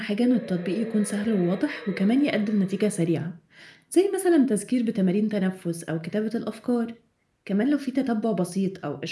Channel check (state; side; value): identical; both; correlation 1.00